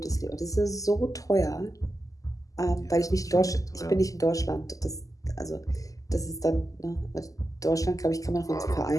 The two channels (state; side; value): late; right; 0.17 ms